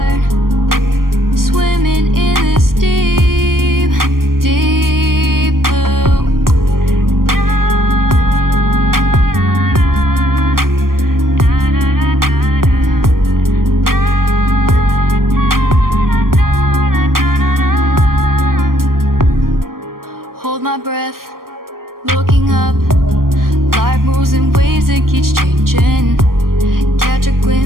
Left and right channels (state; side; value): late; left; 0.92 ms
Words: Swimming in this deep, deep blue. Hold my breath, looking up. Life moves in waves, it keeps changing. Catch a